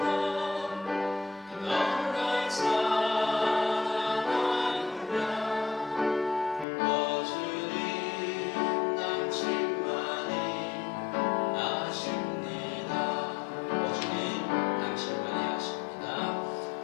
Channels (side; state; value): right; drops out; at 6.7 s